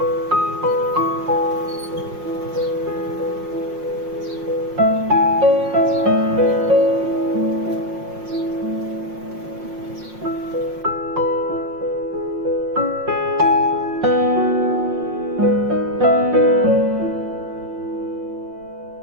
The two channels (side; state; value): left; late; 5.6 ms